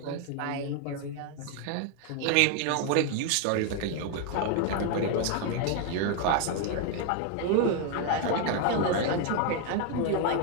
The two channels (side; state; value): both; different; correlation 0.01